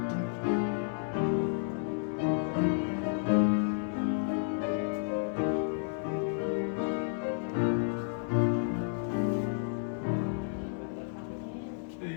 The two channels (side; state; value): right; silent; 57 dB below the other